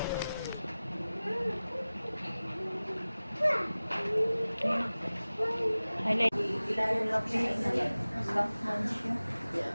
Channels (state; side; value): inverted; both; correlation -0.97